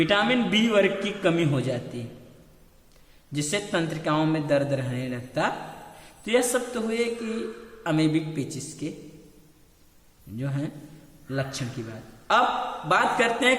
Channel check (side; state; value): both; identical; correlation 1.00